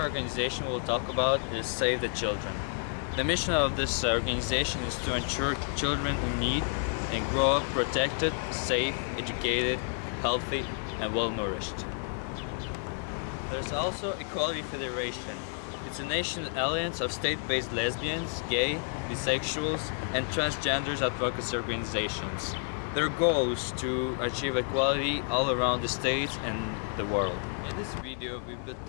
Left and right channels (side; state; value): right; silent; 58 dB below the other